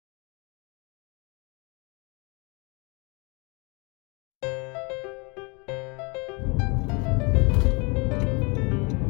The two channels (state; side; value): quieter; right; 30.3 dB